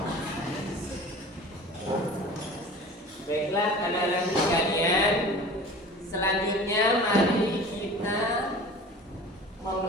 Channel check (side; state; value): both; normal; correlation 0.40